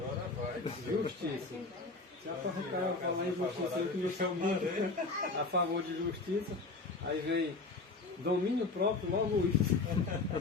Justiça. Se o cara falar em justiça, ele começou muito a favor de justiça, aí vem domínio próprio, logo isso.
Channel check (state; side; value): quieter; right; 3.6 dB